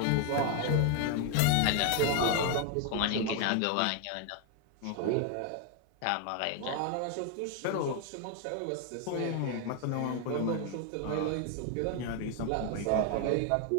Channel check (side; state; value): both; different; correlation 0.00